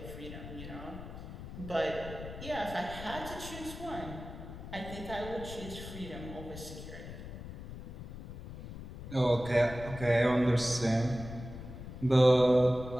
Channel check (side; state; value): left; noise; rumble, 11 dB below the sound